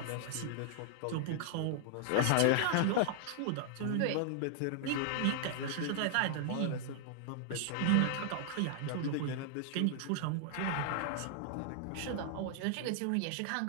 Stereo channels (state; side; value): different; both; correlation -0.01